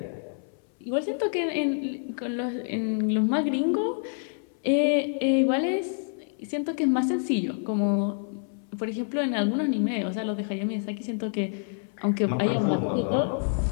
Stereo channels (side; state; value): right; silent; 58 dB below the other